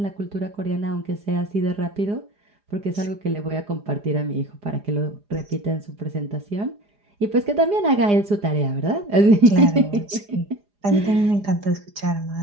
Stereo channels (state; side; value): late; left; 4.9 ms